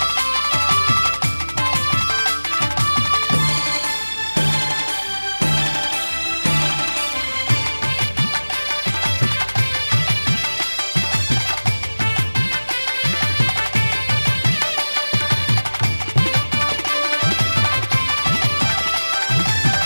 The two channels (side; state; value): both; inverted; correlation -1.00